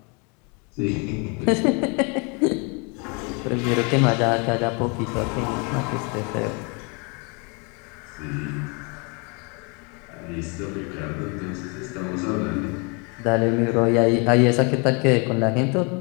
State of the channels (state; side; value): quieter; right; 32.8 dB